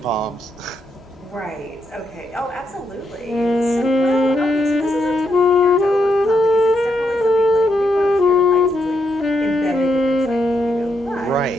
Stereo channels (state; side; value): normal; both; correlation 0.79